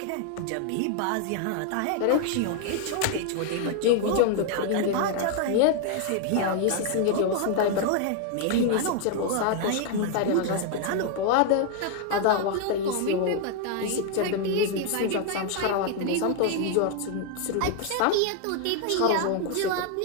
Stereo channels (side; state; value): both; different; correlation 0.00